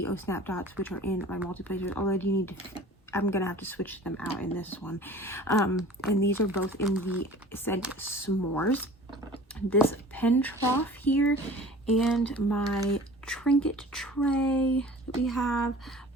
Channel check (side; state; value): both; normal; correlation 0.44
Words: Snap Dots, which are in my multi placers. Although I'm gonna have to switch them out in this one. And these are both in the scent S'mores. This pen trough here, and my trinket tray that we have,